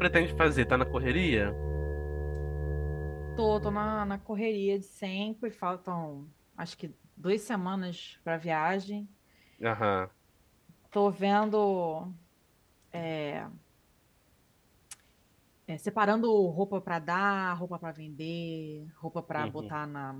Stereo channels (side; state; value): both; identical; correlation 1.00